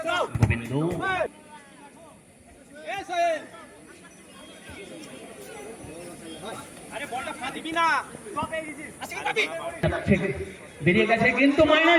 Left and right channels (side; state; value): both; identical; correlation 1.00